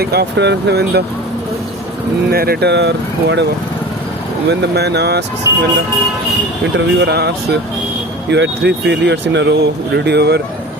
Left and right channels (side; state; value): both; normal; correlation 0.37